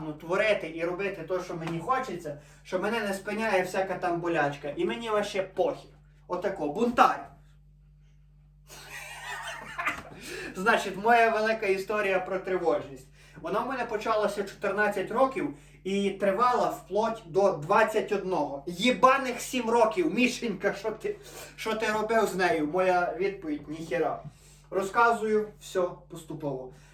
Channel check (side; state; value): both; identical; correlation 1.00